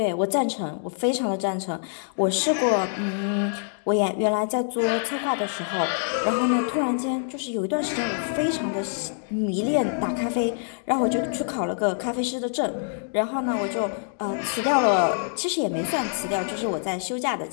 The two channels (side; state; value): right; silent; digital silence